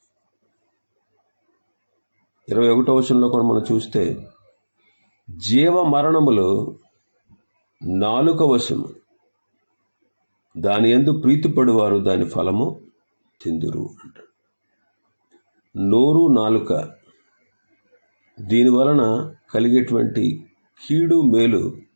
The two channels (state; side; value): inverted; both; correlation -1.00